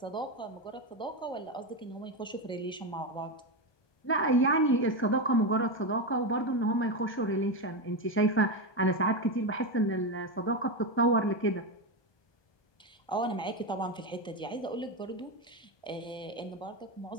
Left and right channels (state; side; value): late; right; 1.2 ms